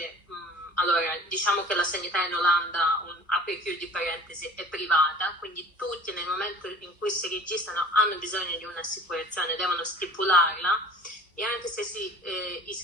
allora diciamo che la sanità in Olanda, apri e chiudi parentesi, è privata, quindi tutti nel momento in cui si registrano hanno bisogno di un'assicurazione, devono stipularla, e anche se si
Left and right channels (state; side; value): normal; both; correlation 0.44